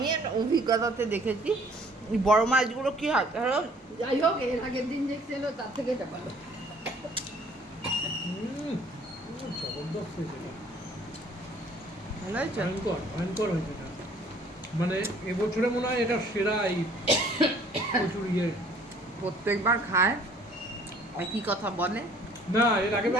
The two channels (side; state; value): both; normal; correlation 0.57